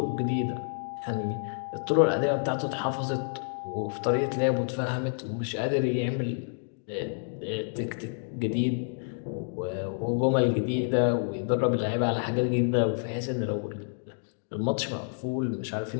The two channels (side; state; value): right; silent; digital silence